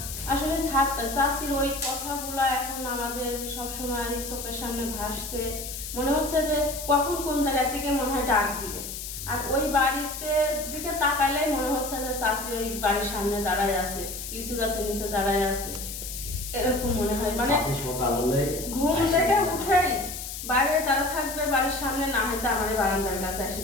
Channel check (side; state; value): left; noise; hiss, 8 dB below the sound